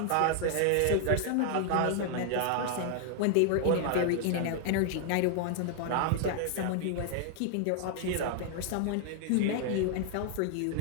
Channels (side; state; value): both; different; correlation 0.00